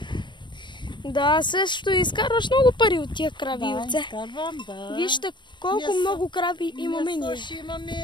Да, също изкарваш много пари от тия крави и овце. Да, изкарвам, да. Вижте колко много крави имаме ние. Ще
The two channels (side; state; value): right; late; 0.22 ms